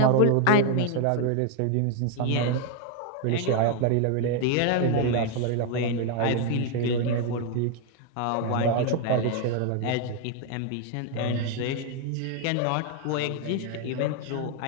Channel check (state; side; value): different; both; correlation 0.00